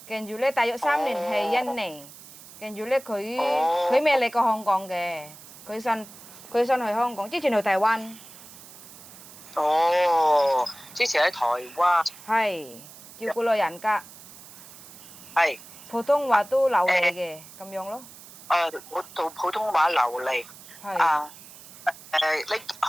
跟住咧大約3年係印尼。跟住咧，佢未嚟過香港嘅，佢新去香港，之前去台灣。哦，之前喺台灣。係照顧老人家。係。普通話都流利嘅，咁樣咯。普通話流利。係。你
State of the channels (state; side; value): noise; right; hiss, 18 dB below the sound